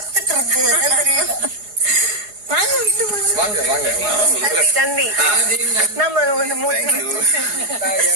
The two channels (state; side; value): late; left; 4.8 ms